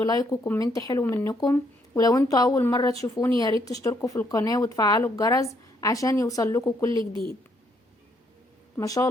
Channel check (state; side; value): normal; both; correlation 0.71